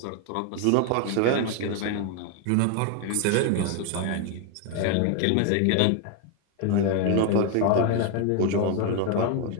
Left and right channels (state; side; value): different; both; correlation 0.01